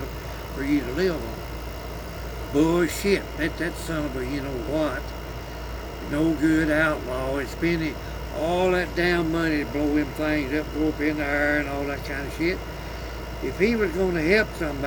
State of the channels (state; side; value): identical; both; correlation 1.00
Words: for you to live on. Bullshit. That son of a you know what, no good outlaw is spending all that damn money to blow them things up, go up in the air and all that kind of shit. If he was going to help